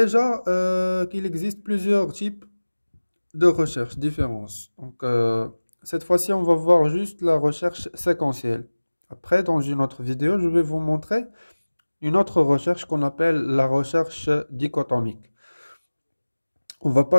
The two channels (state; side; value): inverted; both; correlation -1.00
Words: qu'il existe plusieurs types de recherche différents. Donc cette fois-ci, on va voir juste la recherche séquentielle. Après, dans une autre vidéo, je vais vous montrer une autre recherche qu'on appelle la recherche dichotomique. On va